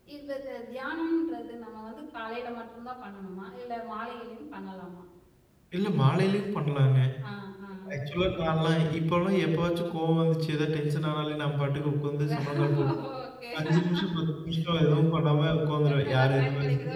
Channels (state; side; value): identical; both; correlation 1.00